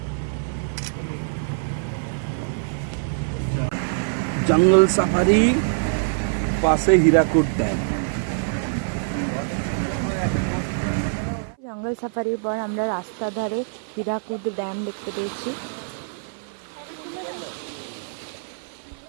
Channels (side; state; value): left; silent; 59 dB below the other